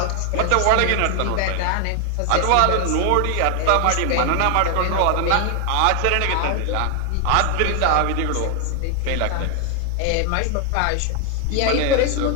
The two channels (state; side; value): different; both; correlation 0.00